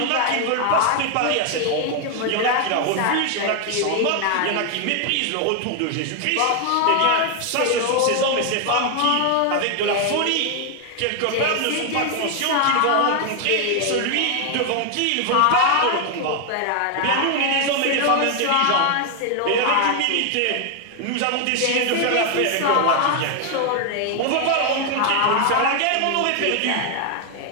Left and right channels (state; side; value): different; both; correlation 0.00